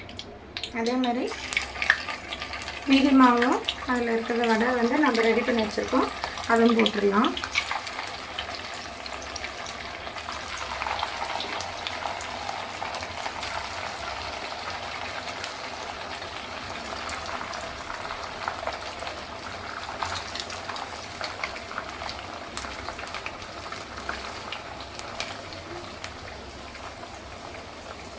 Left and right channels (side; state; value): both; identical; correlation 1.00